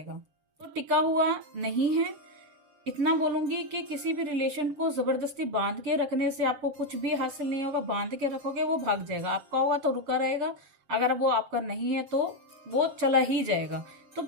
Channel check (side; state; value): left; late; 7.2 ms